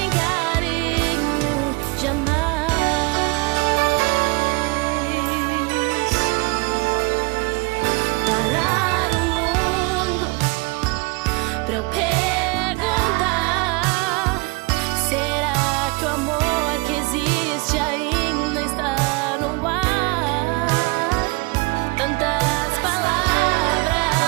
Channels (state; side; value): quieter; left; 27.6 dB